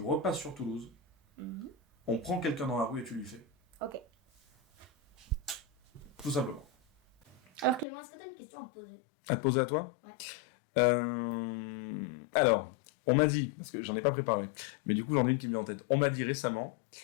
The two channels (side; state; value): right; drops out; at 7.9 s